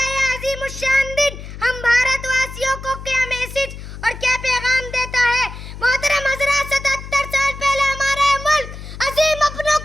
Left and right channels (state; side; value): noise; left; hum, 12 dB below the sound